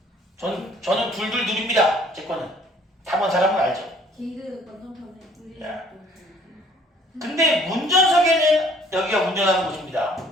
저는 둘둘 둘입니다. 제 거는. 타본 사람은 알죠. 개그 완전 편해 야. 근데 운전석에는 여기가 운전하는 곳입니다.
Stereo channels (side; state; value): both; normal; correlation 0.58